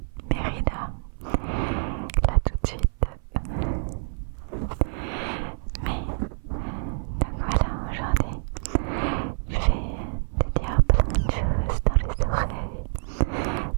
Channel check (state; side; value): silent; left; 57 dB below the other